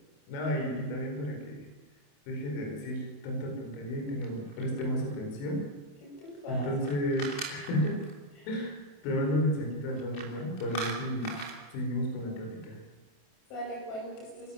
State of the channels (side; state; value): right; late; 27 ms